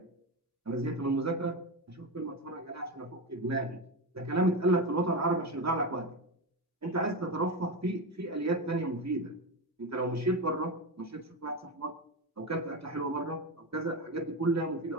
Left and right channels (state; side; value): normal; both; correlation 0.17